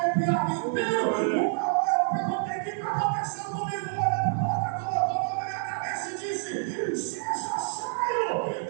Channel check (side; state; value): left; silent; digital silence